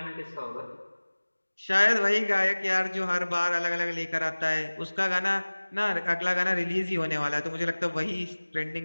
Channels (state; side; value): inverted; both; correlation -1.00